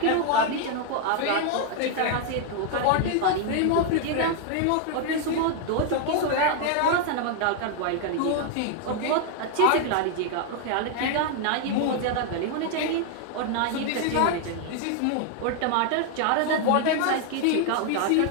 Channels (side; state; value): both; different; correlation 0.00